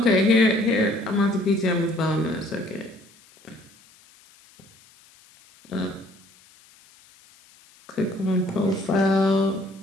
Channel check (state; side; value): noise; left; hiss, 28 dB below the sound